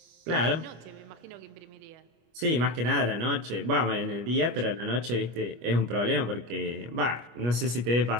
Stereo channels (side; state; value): left; late; 25 ms